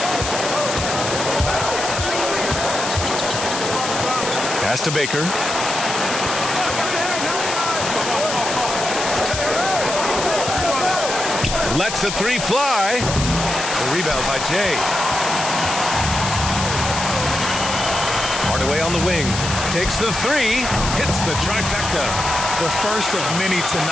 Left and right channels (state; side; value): noise; left; hiss, 5 dB below the sound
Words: Pass to Baker. Lets the 3 fly. The rebound by Jay. Hardaway on the wing. Takes the 3. Hits the trifecta. The first of many